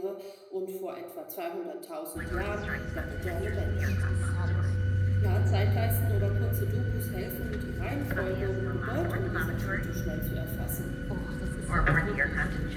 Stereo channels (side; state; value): both; identical; correlation 1.00